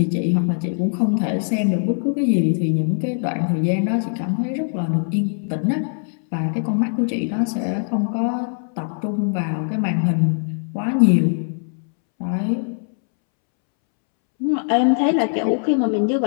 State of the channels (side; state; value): right; silent; 65 dB below the other